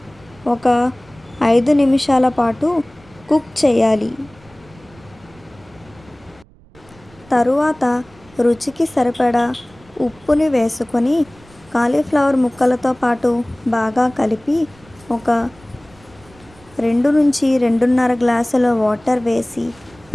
ఒక 5 నిమిషాల పాటు కుక్ చేయాలి. తరువాత రుచికి సరిపడా ఉప్పుని వేసుకొని కాలీఫ్లవర్ ముక్కలతో పాటు బాగా కలిపి ఒక 2 నుంచి 2.5 గ్లాసుల వాటర్ వేసి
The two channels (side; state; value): right; noise; rumble, 27 dB below the sound